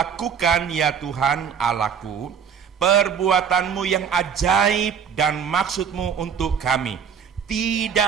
ya Tuhan Allahku, perbuatanmu yang ajaib dan maksudmu untuk kami.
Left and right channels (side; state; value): left; quieter; 7.4 dB